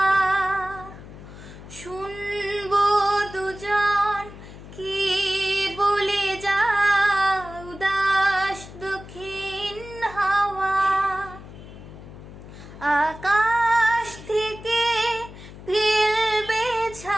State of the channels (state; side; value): noise; left; hum, 16 dB below the sound